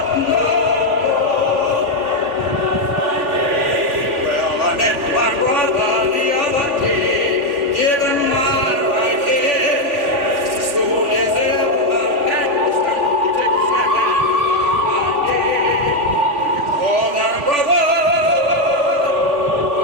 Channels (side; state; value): left; late; 3.4 ms